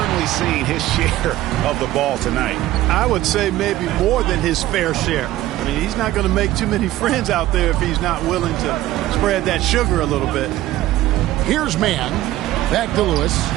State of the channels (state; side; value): quieter; left; 15.3 dB